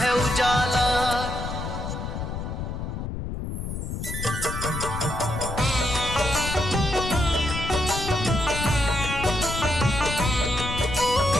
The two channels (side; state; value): left; noise; rumble, 5 dB below the sound